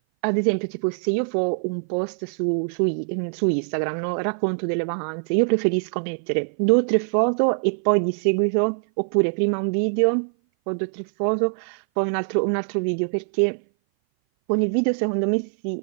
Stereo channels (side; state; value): left; silent; 58 dB below the other